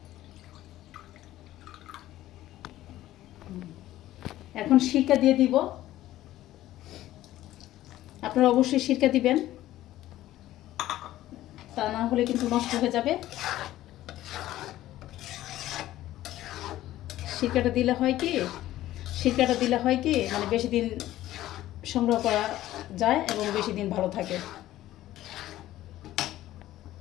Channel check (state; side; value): quieter; right; 14.6 dB